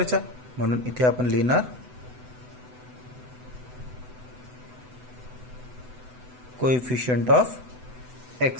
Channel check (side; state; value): left; late; 8.0 ms